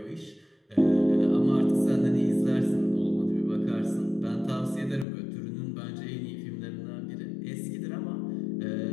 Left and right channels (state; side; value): drops out; right; at 5.1 s